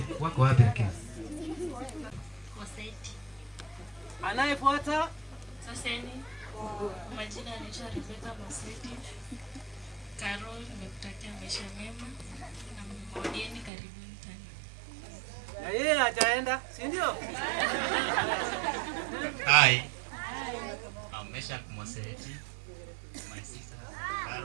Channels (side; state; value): left; drops out; at 13.7 s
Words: Wako wapi lakini? Anayefuata Saseni. Majina anaitwa Rebecca Moseti. Karo, nimekutakia maisha mema na mgodieni karibuni tena. na yeye hajaenda, si ndio? Hi. I'm Meshach Moseti. My sister